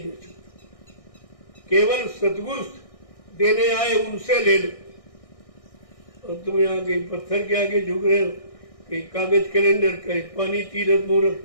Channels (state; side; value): late; right; 1.6 ms